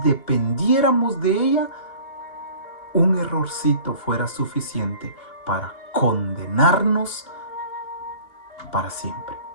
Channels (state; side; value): late; right; 2.8 ms